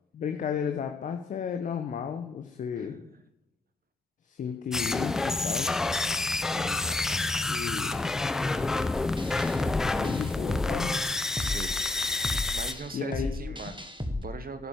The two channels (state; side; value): quieter; right; 3.1 dB